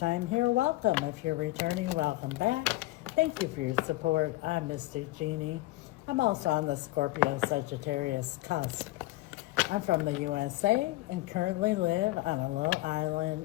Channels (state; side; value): quieter; right; 18.9 dB